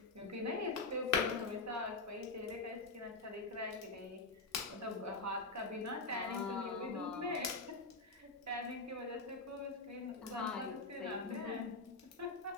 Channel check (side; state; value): right; quieter; 3.5 dB